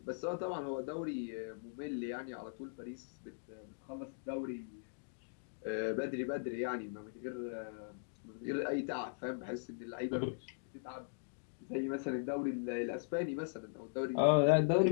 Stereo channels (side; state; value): right; silent; digital silence